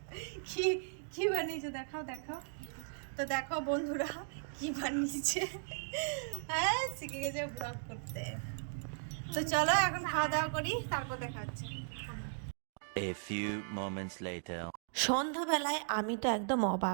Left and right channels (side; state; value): left; silent; digital silence